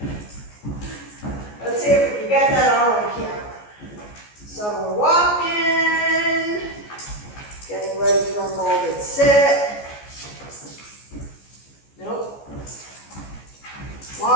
Let's see if we can get that all on camera. So we're walking, getting ready for a molded sit. Nope.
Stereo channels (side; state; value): right; late; 14 ms